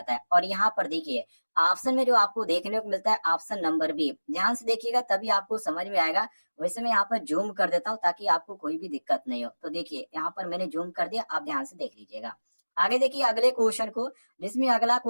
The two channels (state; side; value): inverted; both; correlation -1.00